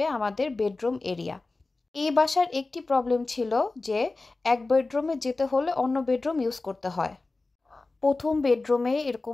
আমাদের বেডরুম এরিয়া। এই বাসার একটি প্রবলেম ছিল যে এক বেডরুমে যেতে হলে অন্য বেডরুম ইউজ করতে হয়। প্রথম বেডরুমে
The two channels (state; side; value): quieter; right; 3.4 dB